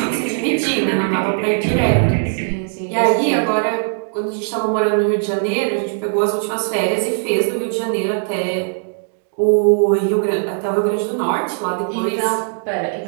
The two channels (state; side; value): silent; left; digital silence